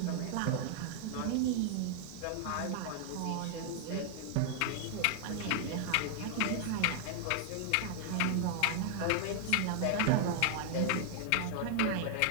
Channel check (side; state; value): both; different; correlation 0.00